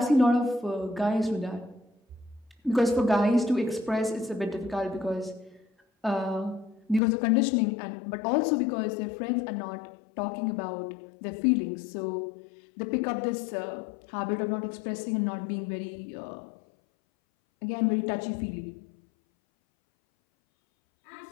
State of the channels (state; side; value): drops out; right; at 7.0 s